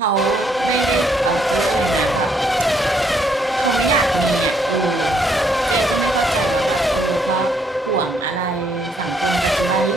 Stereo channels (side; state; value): both; normal; correlation 0.70